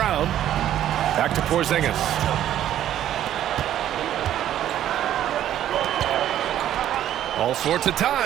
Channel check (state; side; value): quieter; left; 11.6 dB